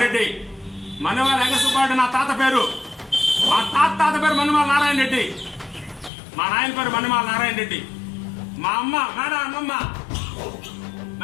Reddy. Mannemala Venkata Subba Reddy నా తాత పేరు. మా తాత పేరు మన్నెమాల నారాయణ రెడ్డి. మా నాయన పేరు మన్నెమాల నారాయణ రెడ్డి. మా అమ్మ మేడం అమ్మమ్మ,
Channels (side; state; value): right; drops out; at 6.1 s